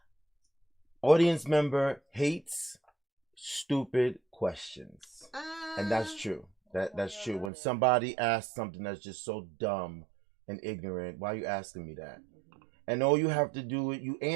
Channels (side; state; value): left; drops out; at 7.5 s